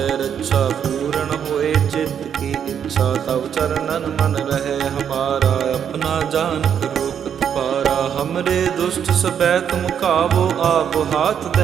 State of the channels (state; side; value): quieter; left; 8.3 dB